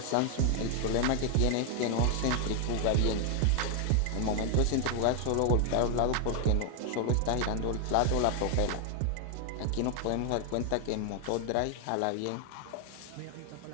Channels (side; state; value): both; different; correlation 0.00